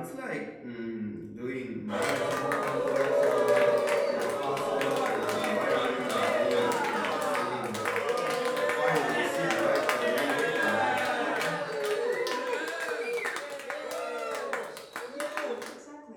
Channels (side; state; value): both; identical; correlation 1.00